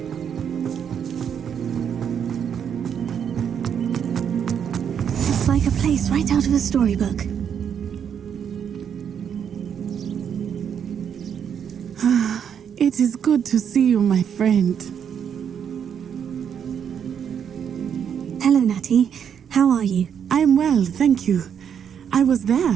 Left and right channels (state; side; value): quieter; left; 8.1 dB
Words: It's like a place right out of a storybook. It is good to see you, my friend. Hello, Natty. How are you? I am well, thank you. I was